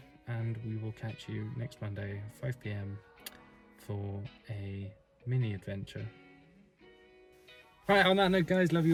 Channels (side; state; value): both; identical; correlation 1.00